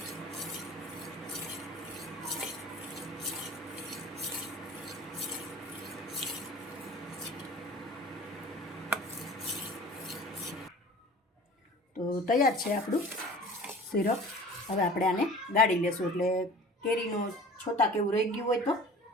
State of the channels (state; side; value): normal; both; correlation 0.43